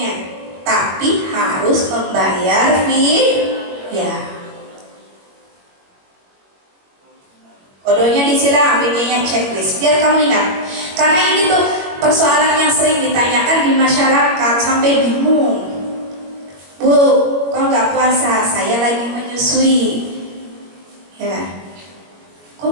tapi harus membayar fidyah. Kodonya disilang, fidyahnya checklist. Biar kamu ingat. Karena ini tuh persoalan yang sering ditanyakan di masyarakat sampai bingung. Bu, kok nggak puasa? Saya lagi menyusui. Ya,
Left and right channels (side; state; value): left; late; 21 ms